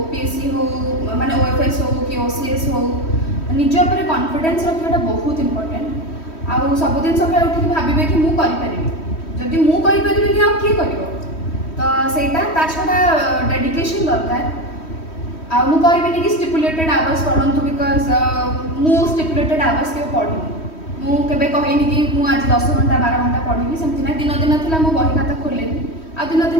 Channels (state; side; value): late; right; 3.1 ms